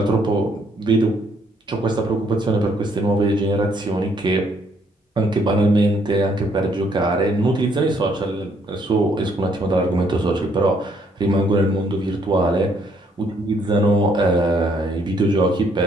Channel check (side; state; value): both; normal; correlation 0.68